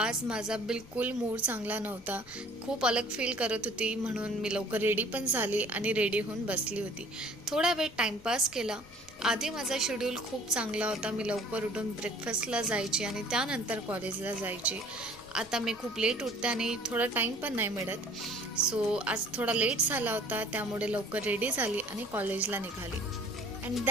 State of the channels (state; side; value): noise; left; rumble, 22 dB below the sound